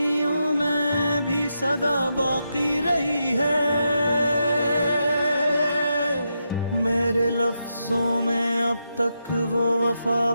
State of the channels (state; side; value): inverted; both; correlation -0.84